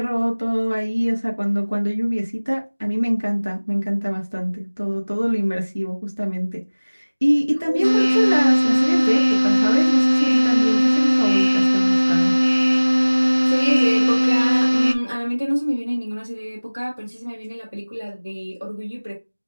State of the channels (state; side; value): inverted; both; correlation -1.00